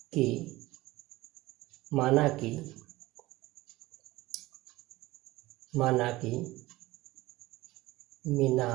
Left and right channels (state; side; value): quieter; left; 18.8 dB